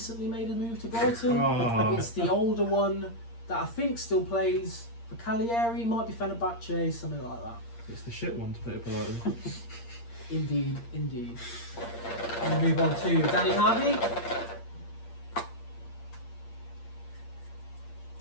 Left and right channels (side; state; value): right; late; 8.6 ms